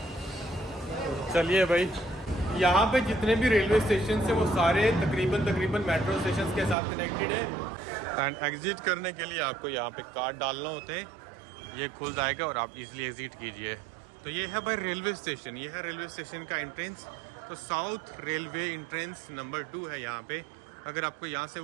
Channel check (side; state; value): left; drops out; at 6.8 s